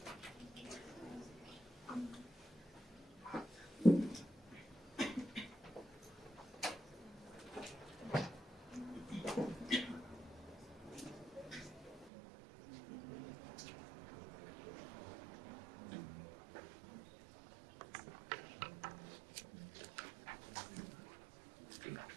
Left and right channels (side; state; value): left; drops out; at 12.1 s